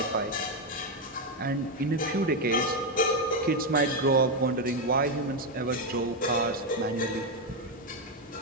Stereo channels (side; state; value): both; normal; correlation 0.06